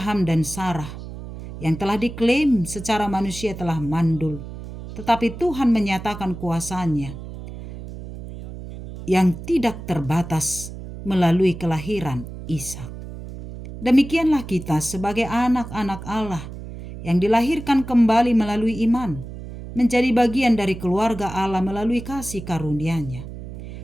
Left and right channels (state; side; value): noise; right; hum, 11 dB below the sound